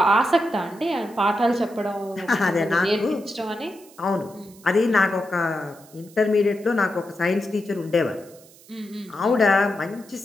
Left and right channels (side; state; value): right; noise; hiss, 24 dB below the sound